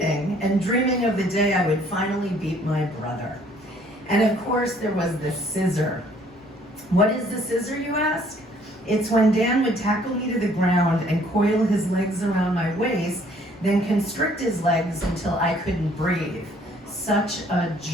and dreaming of the day I would finally beat my brother. And of course, there was the scissor. What is the scissor, you ask? It's when Dan would tackle me to the ground and coil his legs around my waist, then constrict his legs until I couldn't breathe. Such a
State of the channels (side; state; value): both; normal; correlation 0.60